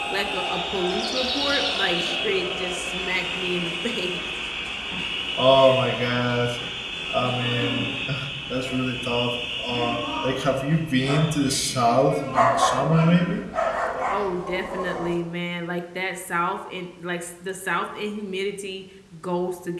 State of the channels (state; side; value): identical; both; correlation 1.00